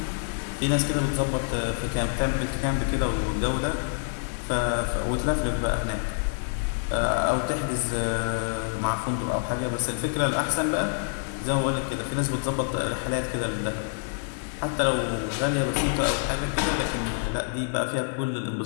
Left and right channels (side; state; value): right; silent; digital silence